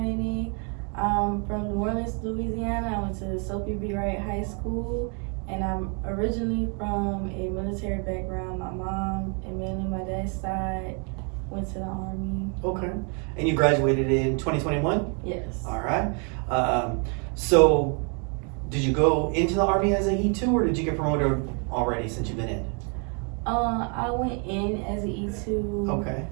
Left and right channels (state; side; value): quieter; left; 38.1 dB